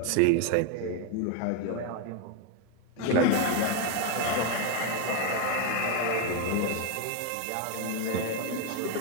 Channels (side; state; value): both; different; correlation 0.01